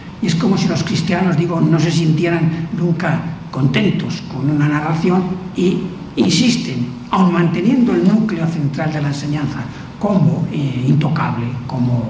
Y es como si los cristianos, digo, no se sintieran nunca contentos con una narración y insisten, aun manteniendo el núcleo central de la enseñanza como intocable, como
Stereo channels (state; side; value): identical; both; correlation 1.00